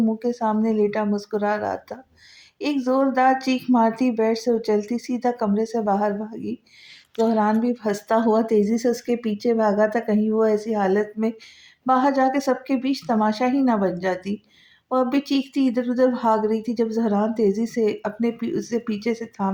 کے سامنے لیٹا مسکرا رہا تھا۔ ایک زوردار چیخ مارتی بیڈ سے اچھلتی سیدھا کمرے سے باہر بھاگی۔ زہران بھی ہنستا ہوا تیزی سے اس کے پیچھے بھاگا تھا، کہیں وہ ایسی حالت میں باہر جا کے سب کے بیچ تماشا ہی نہ بن جاتی۔ وہ اب بھی چیختی ادھر ادھر بھاگ رہی تھی جب زہران تیزی سے اسے پیچھے سے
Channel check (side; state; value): both; identical; correlation 1.00